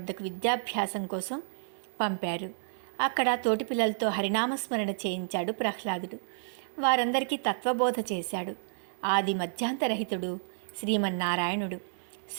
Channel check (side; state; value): left; silent; digital silence